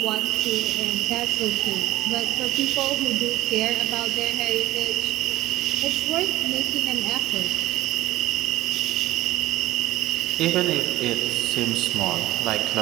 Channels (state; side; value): quieter; left; 16.0 dB